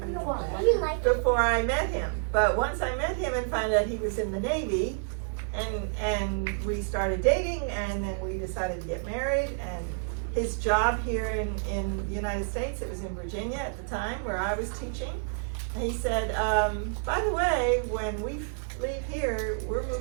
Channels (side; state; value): left; silent; digital silence